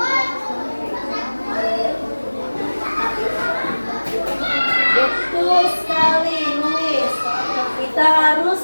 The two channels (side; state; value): both; inverted; correlation -1.00